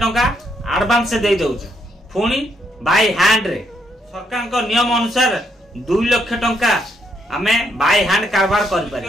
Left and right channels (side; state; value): both; normal; correlation 0.75